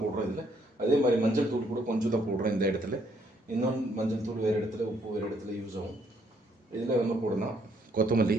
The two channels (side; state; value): both; normal; correlation 0.69